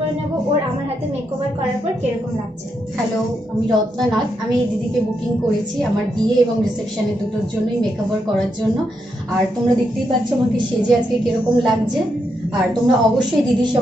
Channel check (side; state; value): both; normal; correlation 0.81